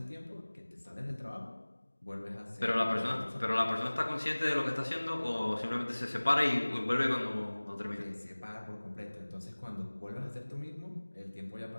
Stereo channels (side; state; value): both; inverted; correlation -1.00